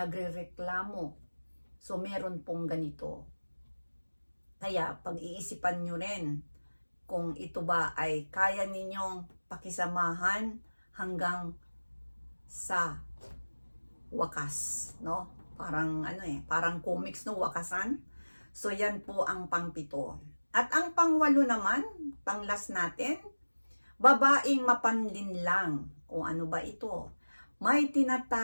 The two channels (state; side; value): inverted; both; correlation -1.00